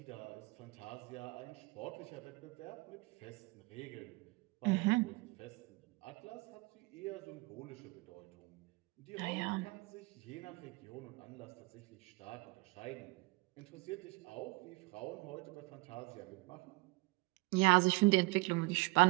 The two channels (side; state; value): left; quieter; 24.5 dB